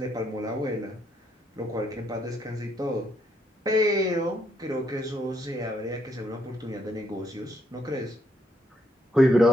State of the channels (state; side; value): normal; both; correlation 0.74